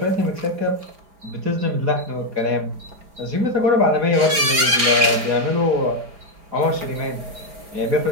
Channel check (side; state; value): left; late; 4.4 ms